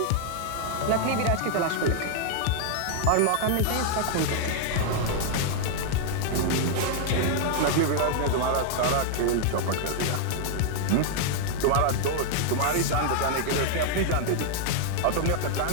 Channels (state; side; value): different; both; correlation 0.00